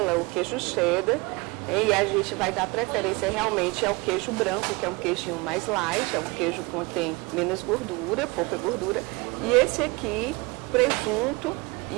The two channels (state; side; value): quieter; left; 25.5 dB